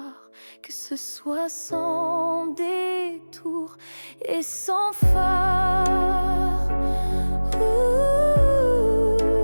que ce soit sans détour et sans phare.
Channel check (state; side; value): inverted; both; correlation -1.00